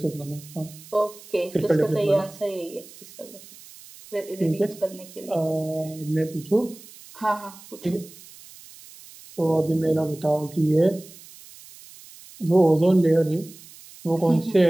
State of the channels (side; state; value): right; noise; hiss, 20 dB below the sound